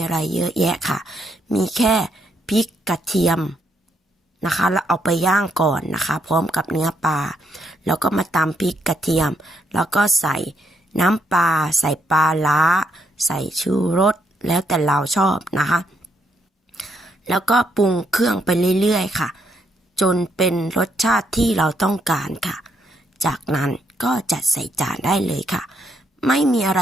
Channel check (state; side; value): normal; both; correlation 0.75